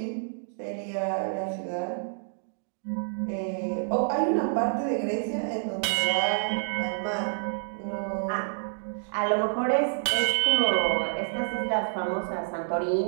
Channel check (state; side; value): silent; left; digital silence